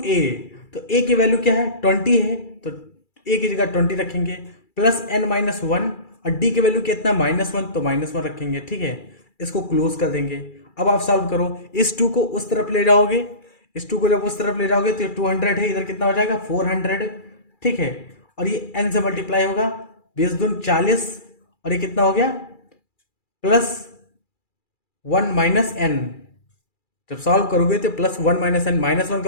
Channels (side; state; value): right; late; 2.3 ms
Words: तो a की वैल्यू क्या है 20 है तो a की जगह 20 रखेंगे, प्लस एन माइनस वन और d की वैल्यू कितना -1 तो -1 रखेंगे, ठीक है। इसको क्लोज कर देंगे। अब आप सॉल्व करो, इस 2 को उस तरफ ले जाओगे, इस 2 को जब उस तरफ ले जाओगे तो ये 200 है, इधर कितना हो जाएगा 400, ठीक है। और ये n से मल्टीप्लाई होगा, 20 दून 40, और ये कितना हो गया प्लस 1 माइनस एन। जब सॉल्व करोगे तो प्लस 1 माइनस एन, -1